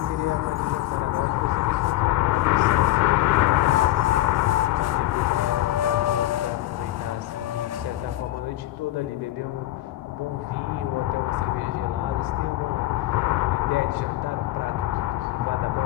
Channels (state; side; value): quieter; right; 15.5 dB